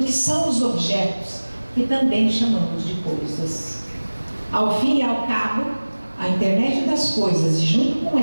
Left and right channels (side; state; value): both; inverted; correlation -1.00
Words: são os objetos que também chamamos de coisas. Ao fim e ao cabo, a internet das coisas e junto com